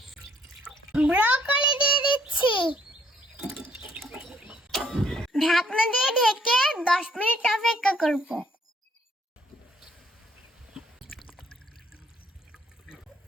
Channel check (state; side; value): normal; both; correlation 0.66